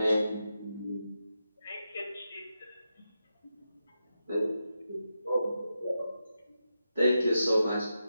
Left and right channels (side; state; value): both; inverted; correlation -0.88